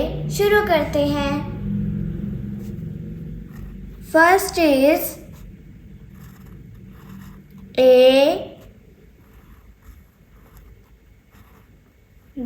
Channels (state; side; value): identical; both; correlation 1.00